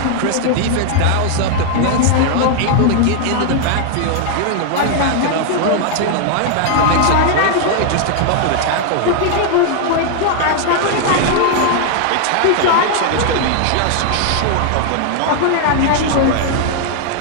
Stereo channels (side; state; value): both; different; correlation 0.00